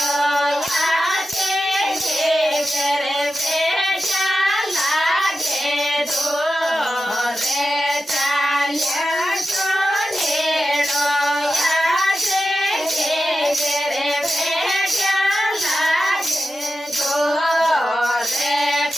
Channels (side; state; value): both; normal; correlation 0.91